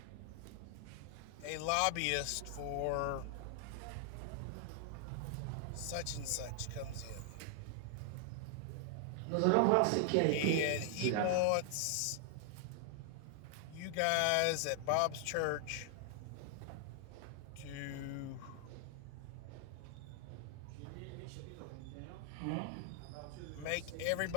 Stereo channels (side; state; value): both; different; correlation 0.00